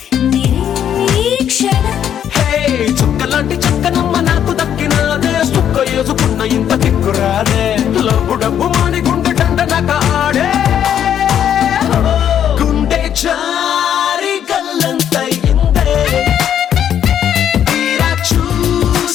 నిరీక్షణం హే చుక్కలాంటి చక్కనమ్మ నాకు దక్కినాదే సుక్క వేసుకున్న ఇంత దిక్కురాదే లబ్బు డబ్బు మాని గుండె దండనక ఆడే గుండె చారి గల్లంతయిందే తీరా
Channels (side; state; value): right; quieter; 9.6 dB